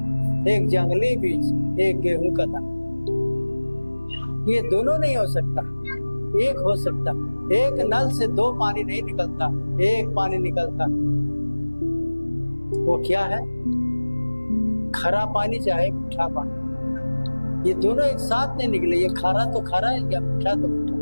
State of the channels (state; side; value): inverted; both; correlation -1.00